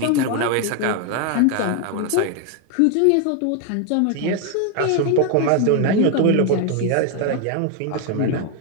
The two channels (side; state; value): both; different; correlation 0.01